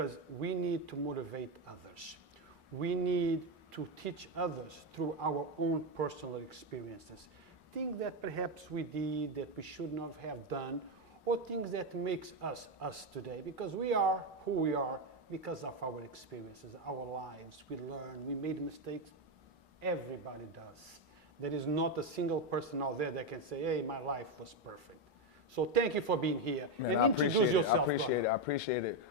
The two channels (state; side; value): normal; both; correlation 0.08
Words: we need to motivate others. We need to teach others through our own personal experiences. Things that perhaps we did that we should not have done, or things that makes us us today, because we are who we are because of our experiences, our lives. We learn, we made mistakes. Everybody does. There is not a single person out there that can say, hey, my life was perfect. So thank you for being here. Man, and introduce yourself, brother. I appreciate it.